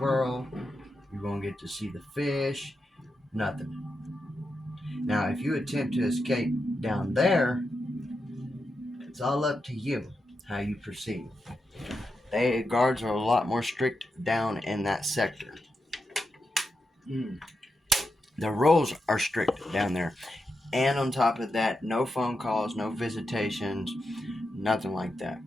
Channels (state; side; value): normal; both; correlation 0.87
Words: You won't get to see the fish. Nothing. Now, if you attempt to escape down there, it's all up to you how you proceed. The guards are a lot more strict down in that sector. The rules are strict down there. And on top of that, no phone calls, no visitations, nothing like that.